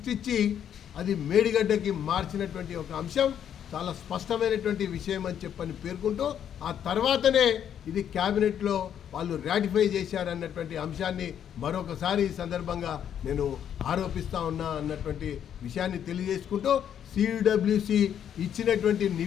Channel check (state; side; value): quieter; right; 9.3 dB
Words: అది మేడిగడ్డకి మార్చినటువంటి ఒక అంశం చాలా స్పష్టమైనటువంటి విషయం అని చెప్పని పేర్కొంటూ ఆ తర్వాతనే ఇది క్యాబినెట్లో వాళ్ళు రాటిఫై చేశారన్నటువంటి అంశాన్ని మరొకసారి ఈ సందర్భంగా నేను ఆరోపిస్తూ ఉన్నా అన్నటువంటి విషయాన్ని తెలియజేసుకుంటూ సిడబ్ల్యూసి ఇచ్చినటువంటి